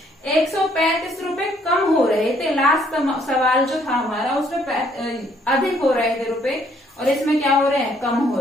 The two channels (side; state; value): both; normal; correlation 0.66